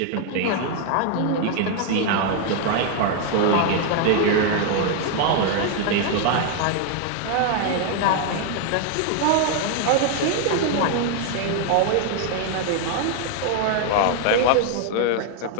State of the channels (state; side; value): different; both; correlation 0.00